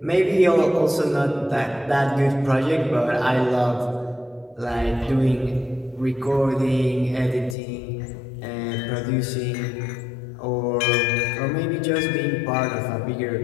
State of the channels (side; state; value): right; drops out; at 7.6 s